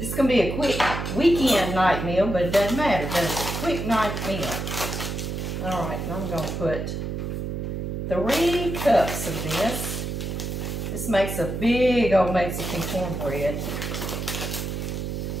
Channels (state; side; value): noise; right; hum, 4 dB below the sound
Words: is going to be a quick weekend night meal, but it doesn't matter, does it? Quick night meal. All right, and I'm going to put 3 cups of this. This makes a big old Mexican cornbread